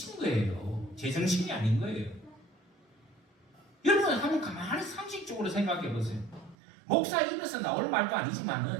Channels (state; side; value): drops out; left; at 6.6 s